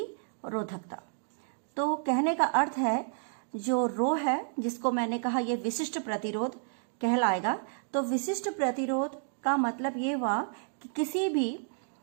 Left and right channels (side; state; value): left; silent; digital silence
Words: तो कहने का अर्थ है जो रो है, जिसको मैंने कहा ये विशिष्ट प्रतिरोध कहलाएगा। तो विशिष्ट प्रतिरोध का मतलब ये हुआ कि किसी भी